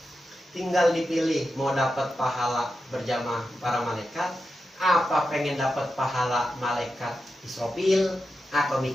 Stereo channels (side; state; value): both; normal; correlation 0.89